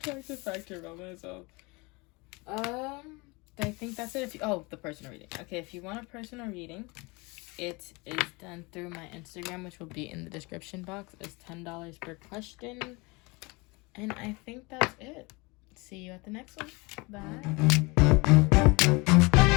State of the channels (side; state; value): right; quieter; 26.3 dB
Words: factor about myself. I think that's it. The personal reading. Okay, if you want a personal reading, it is done through my Instagram, which will be in the description box. It's $10 per question. And I think that's it. See you at the next one. Bye.